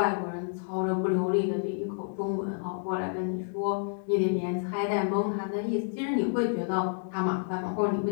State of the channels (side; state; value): right; silent; digital silence